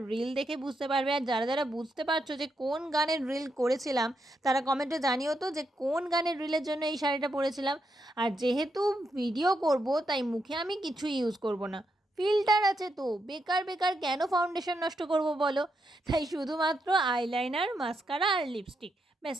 রিল দেখে বুঝতে পারবে। আর যারা যারা বুঝতে পারছো যে কোন গানের রিল করেছিলাম তারা কমেন্টে জানিও তো যে কোন গানের রিলের জন্য এই শাড়িটা পরেছিলাম। আর যেহেতু ভিডিও করব তাই মুখে আমি কিছু ইউজ করব না, ফিল্টার আছে তো বেকার বেকার কেন ফাউন্ডেশন নষ্ট করব বলো। তাই শুধুমাত্র আইলাইনার, মাস্কারা আর লিপস্টিক, ব্যাস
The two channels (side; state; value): both; normal; correlation 0.82